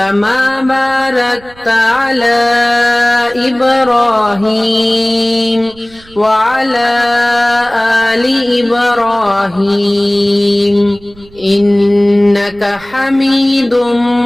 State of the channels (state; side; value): noise; right; rumble, 25 dB below the sound